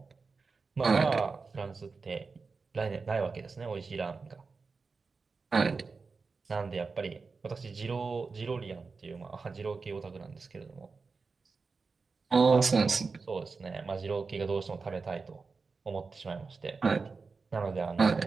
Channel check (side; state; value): left; quieter; 4.5 dB